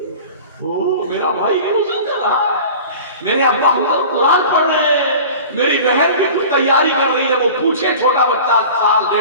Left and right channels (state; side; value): inverted; both; correlation -0.39